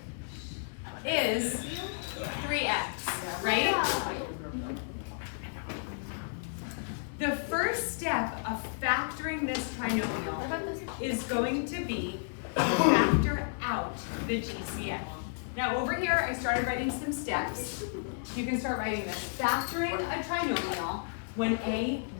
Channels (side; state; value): right; silent; 56 dB below the other